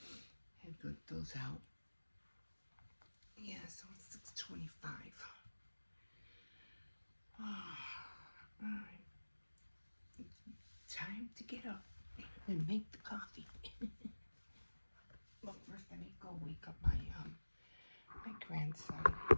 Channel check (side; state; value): both; inverted; correlation -1.00